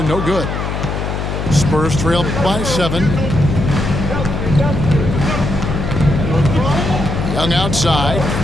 no good. Spurs trail by 7. Young outside.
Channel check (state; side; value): noise; left; hum, 3 dB below the sound